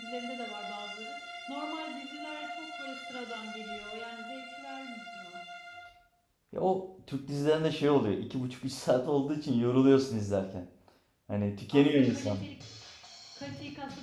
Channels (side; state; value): both; identical; correlation 1.00